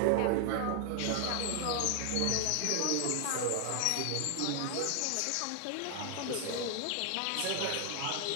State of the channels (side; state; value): both; different; correlation 0.00